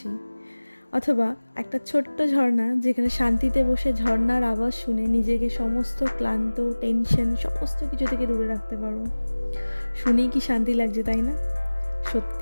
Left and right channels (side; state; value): both; inverted; correlation -1.00